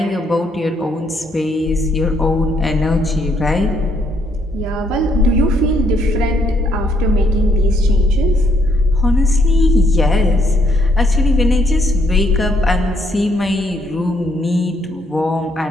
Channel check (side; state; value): both; normal; correlation 0.71